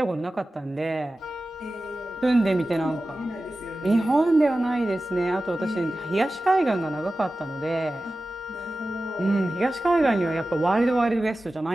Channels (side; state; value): both; normal; correlation 0.95